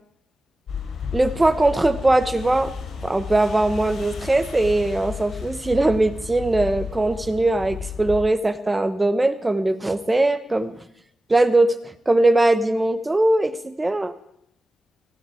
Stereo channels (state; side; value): normal; both; correlation 0.96